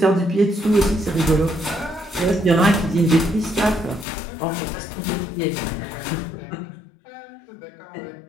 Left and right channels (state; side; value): drops out; right; at 4.0 s